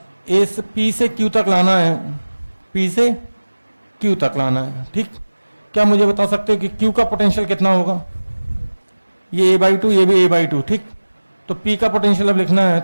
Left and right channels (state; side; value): inverted; both; correlation -1.00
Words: P से Q तक लाना है, P से Q तक लाना है। ठीक, क्या मुझे बता सकते हो कि Q का पोटेंशियल कितना होगा? ये A/2, ये भी A/2। ठीक, तो P का पोटेंशियल अब लिखना है